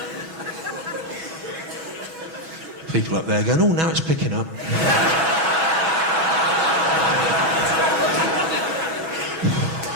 People up there going, oh, now it's picking up.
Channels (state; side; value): late; left; 6.2 ms